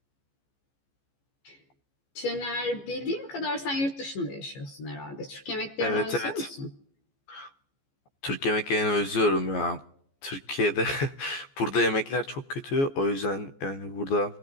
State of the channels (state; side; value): late; right; 14 ms